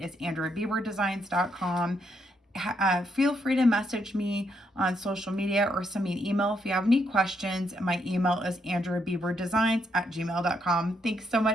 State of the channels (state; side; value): normal; both; correlation 0.76